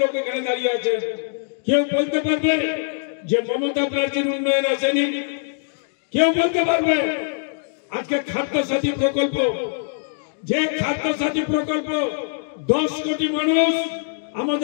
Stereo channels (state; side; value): silent; right; digital silence